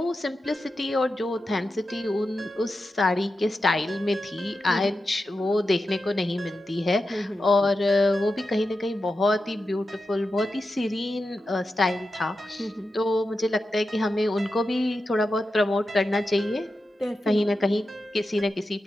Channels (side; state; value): both; normal; correlation 0.90